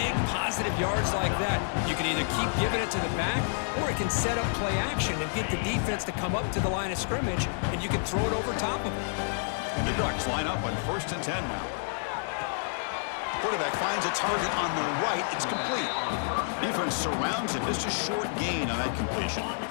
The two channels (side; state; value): right; silent; digital silence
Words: positive yards like that. You can either keep giving it to the back, or it can set up play action and get the defense to come up to the line of scrimmage, and you can throw it over top of it. And the Ducks line up on 1st and 10 now. Quarterback finds a target on the right. It's complete. Defense surrounds him. Just a short gain on that completion.